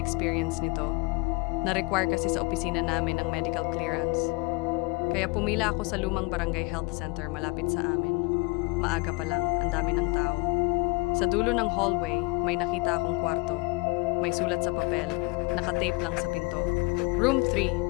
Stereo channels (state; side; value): quieter; right; 26.6 dB